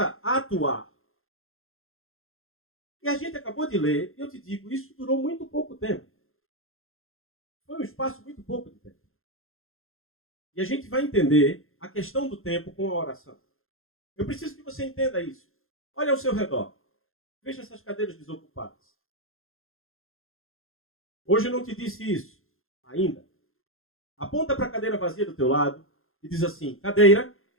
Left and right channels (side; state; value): right; late; 0.61 ms